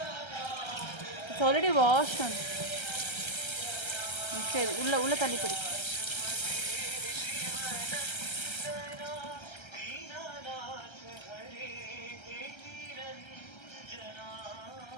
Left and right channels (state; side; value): late; right; 1.3 ms